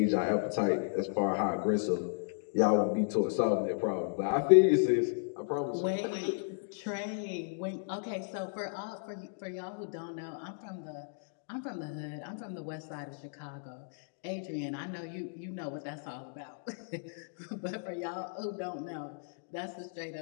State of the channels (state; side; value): silent; right; digital silence